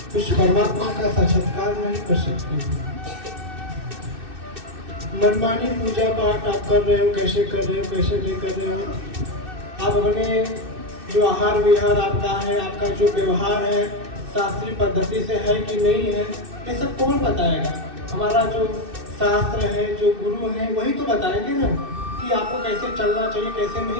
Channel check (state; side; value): late; left; 2.6 ms